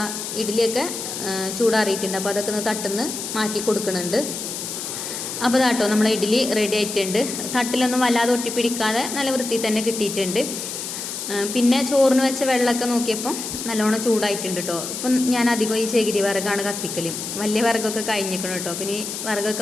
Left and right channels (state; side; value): noise; left; hiss, 6 dB below the sound